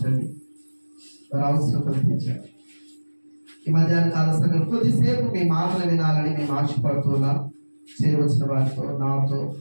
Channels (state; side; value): inverted; both; correlation -1.00